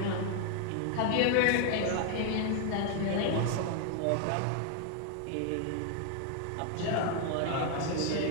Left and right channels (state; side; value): different; both; correlation 0.00